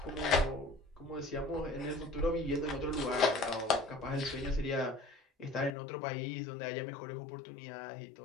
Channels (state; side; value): drops out; right; at 5.7 s